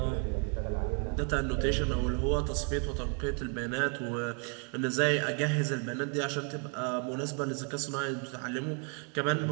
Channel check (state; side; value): quieter; left; 39.1 dB